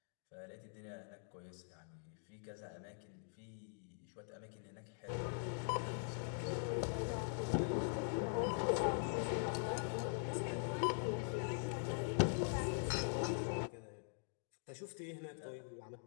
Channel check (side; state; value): right; silent; digital silence